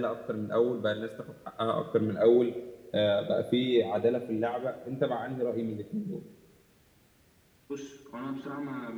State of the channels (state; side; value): identical; both; correlation 1.00